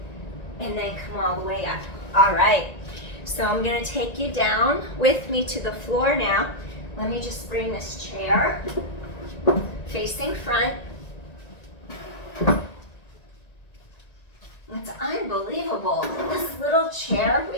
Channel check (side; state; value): right; late; 1.9 ms